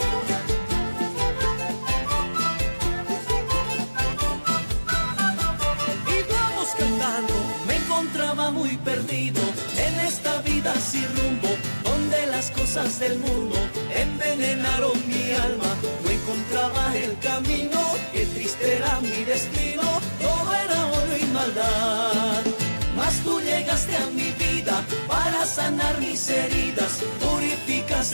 Y vamos cantando. Me encontraba muy perdido en esta vida sin rumbo, donde las cosas del mundo envenenaron mi alma. No encontraba el camino, qué triste era mi destino, todo era odio y maldad. Mas tú llegaste a mi vida para sanar mis heridas,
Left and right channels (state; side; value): inverted; both; correlation -1.00